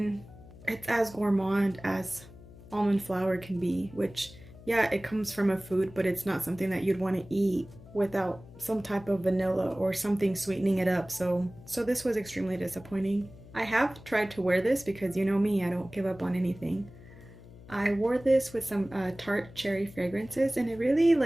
it's as gourmand as almond flour can be, which yeah, it comes from a food, but it's not something that you'd want to eat without some type of vanilla or something sweetening it up. So this was extremely disappointing. I have tried to wear this because you know me, I don't give up on anything. I wore this with some tart cherry fragrances and it really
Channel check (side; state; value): left; noise; hum, 19 dB below the sound